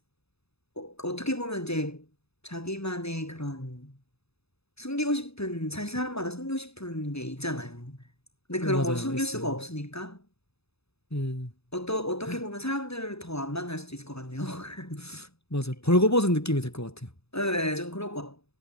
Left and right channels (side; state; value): right; late; 0.79 ms